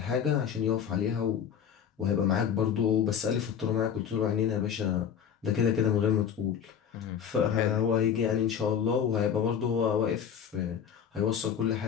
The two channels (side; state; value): right; quieter; 8.0 dB